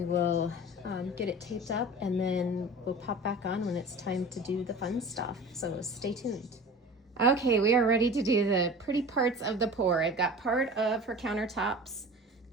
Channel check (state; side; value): normal; both; correlation 0.37